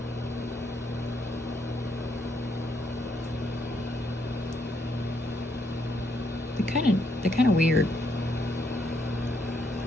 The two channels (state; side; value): normal; both; correlation 0.74